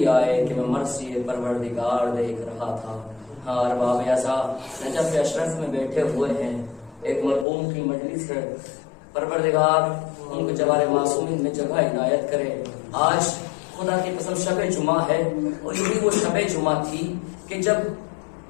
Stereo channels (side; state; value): right; drops out; at 7.5 s